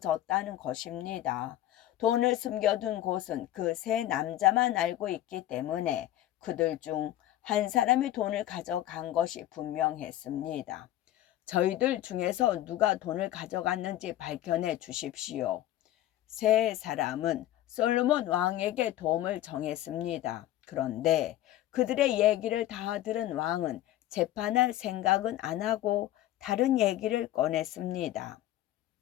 것입니다. 돈을 숨겨둔 곳은 그 3남자만 알고 있기 때문에 그들 중 한 사람이 돈을 가져간 것이 분명했습니다. 저희들 중에서 누가 돈을 가져갔는지 밝혀내 주십시오. 3사람은 솔로몬 왕에게 도움을 정했습니다. 그런데 그들의 얘기를 다 들은 왕은 재판할 생각은 안 하고 다른 얘기를 꺼냈습니다.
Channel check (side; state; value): right; quieter; 13.8 dB